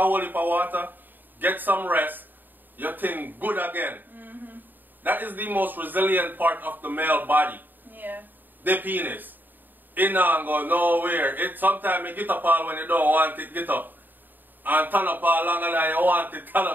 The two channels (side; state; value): left; late; 0.090 ms